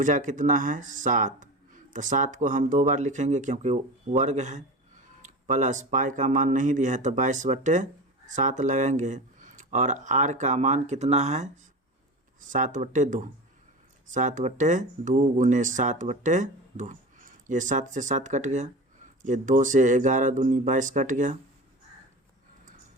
कितना है 7, तो 7 को हम 2 बार लिखेंगे क्योंकि वर्ग है, प्लस पाई का मान नहीं दिया है तो 22/7 लगाएंगे और आर का मान कितना है 7/2, 7/2 गुने 7/2। ये 7 से 7 कट गया, ये 2 से 11 दूनी 22 कट गया।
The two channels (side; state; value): both; normal; correlation 0.30